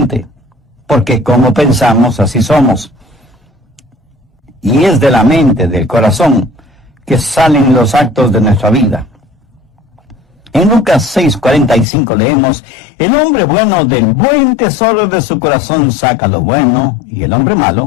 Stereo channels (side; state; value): right; drops out; at 11.9 s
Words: porque como pensamos, así somos. Y es de la mente, del corazón, que salen los actos de nuestra vida. En Lucas 6:45 leemos: el hombre bueno del buen tesoro de su corazón saca lo bueno, y el hombre